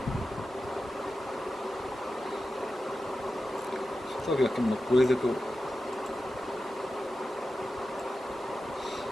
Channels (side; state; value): both; normal; correlation 0.93